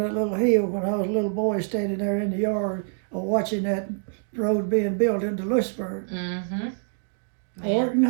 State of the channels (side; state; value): left; silent; digital silence